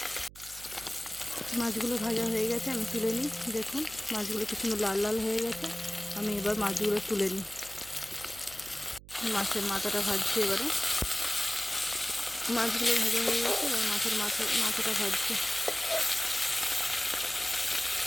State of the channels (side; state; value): right; noise; hum, 19 dB below the sound